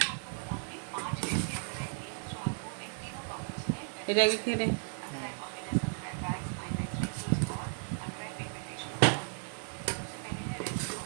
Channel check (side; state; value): left; silent; 55 dB below the other